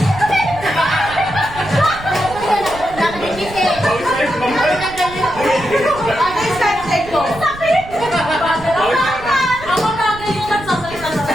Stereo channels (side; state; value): right; noise; rumble, 15 dB below the sound